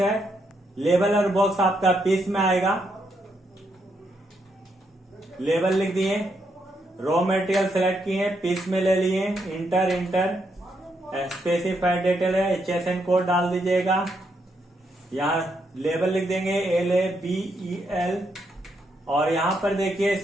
लेबल और बॉक्स आपका पीस में आएगा। लेबल लिख दिए, रॉ मटेरियल सेलेक्ट किए, पीस में ले लिए, इंटर। स्पेसिफाइड डिटेल है, HSN कोड डाल दीजिएगा। यहाँ लेबल लिख देंगे LABEL और यहाँ पर देखिए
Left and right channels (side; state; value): both; normal; correlation 0.78